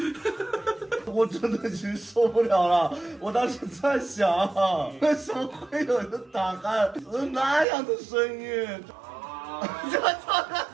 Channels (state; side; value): drops out; left; at 7.7 s